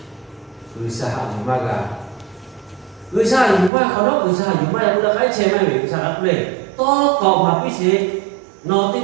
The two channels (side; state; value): left; drops out; at 3.7 s